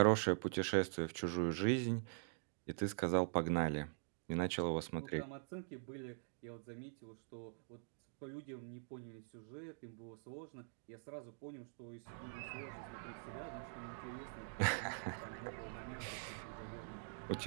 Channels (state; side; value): silent; left; digital silence